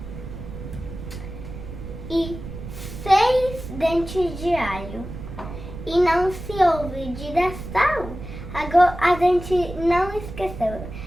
e 6 dentes de alho. E não se olvide da sal. Agora a gente não esqueceu.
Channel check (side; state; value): right; noise; rumble, 10 dB below the sound